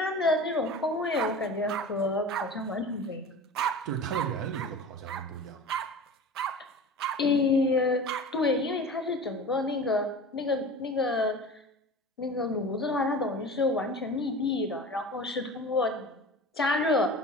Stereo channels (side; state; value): both; normal; correlation 0.36